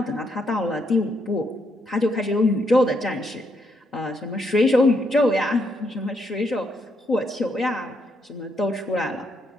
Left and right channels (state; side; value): normal; both; correlation 0.76